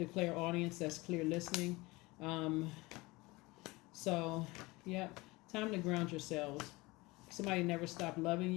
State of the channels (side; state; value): right; quieter; 22.6 dB